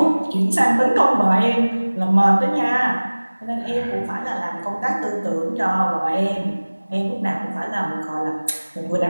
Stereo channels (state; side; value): inverted; both; correlation -1.00